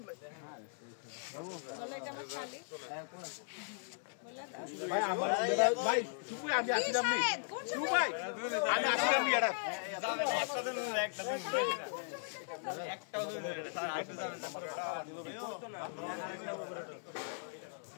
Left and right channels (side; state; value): right; silent; digital silence